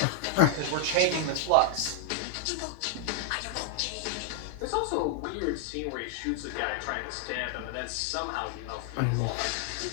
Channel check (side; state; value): both; different; correlation 0.00